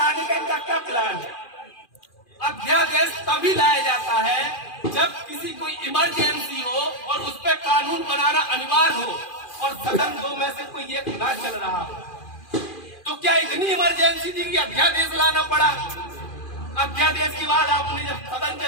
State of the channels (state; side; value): late; right; 2.4 ms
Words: का इनका क्या प्लान है? अध्यादेश तभी लाया जाता है जब किसी कोई इमरजेंसी हो और उस पर कानून बनाना अनिवार्य हो और सदन दो में से कोई एक ना चल रहा हो। तो क्या इतनी इमरजेंसी थी कि अध्यादेश लाना पड़ा? अध्यादेश के बाद आपने जब सदन